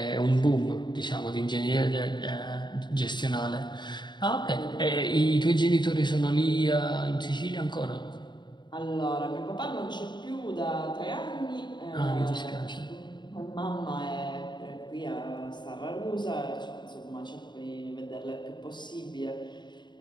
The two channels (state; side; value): late; right; 0.22 ms